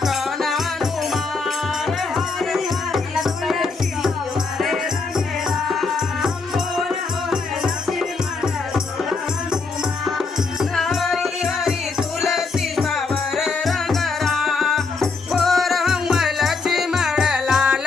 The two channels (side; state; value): right; quieter; 4.3 dB